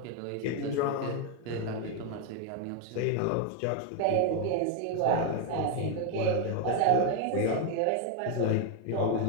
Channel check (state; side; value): different; both; correlation 0.01